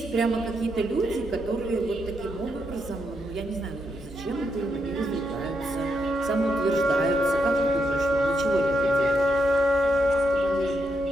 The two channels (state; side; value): normal; both; correlation 0.81